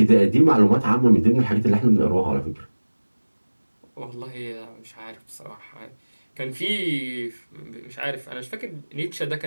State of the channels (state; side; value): inverted; both; correlation -1.00